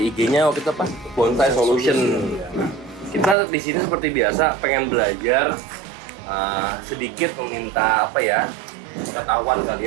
IG-nya waktu itu apa? Bonsai Solution. Kita di sini seperti biasa pengen belajar sedikit meminta apa ya? Pengetahuan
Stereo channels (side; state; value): left; drops out; at 3.4 s